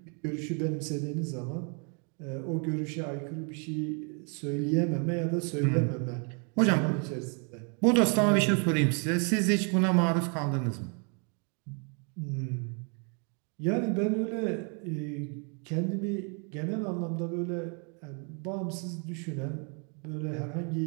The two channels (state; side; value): quieter; left; 37.9 dB